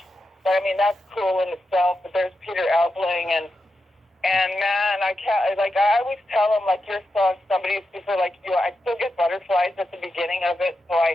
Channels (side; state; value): both; normal; correlation 0.88